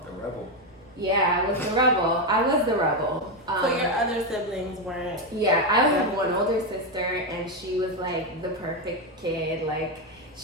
The rebel. yeah, I was the rebel. So your other siblings weren't? Yeah, I have one older sister, and she was the perfect kid.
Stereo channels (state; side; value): normal; both; correlation 0.08